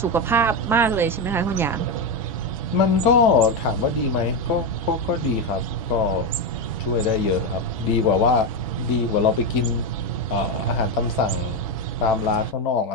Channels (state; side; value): normal; both; correlation 0.10